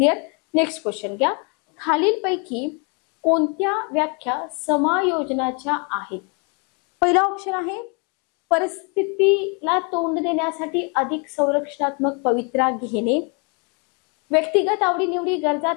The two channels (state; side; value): quieter; right; 34.6 dB